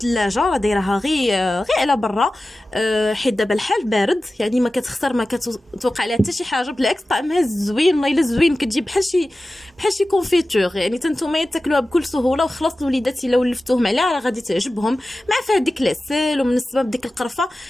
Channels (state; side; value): normal; both; correlation 0.95